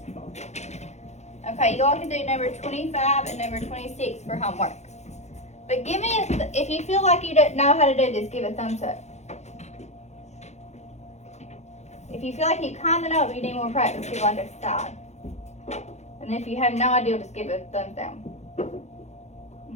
Okay, you all can do number 25 and number 26 for homework. But give me if you feel like you don't know how to do this, give a thumbs up. If you feel like you kind of know, but you need more practice, give like a side. And if you have no idea, just give it a thumbs down.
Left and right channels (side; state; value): right; late; 0.33 ms